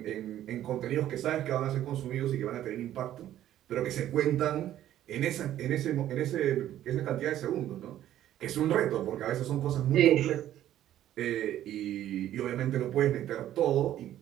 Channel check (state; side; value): quieter; left; 12.3 dB